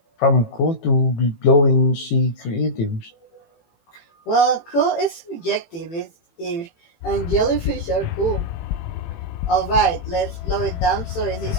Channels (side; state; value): right; late; 18 ms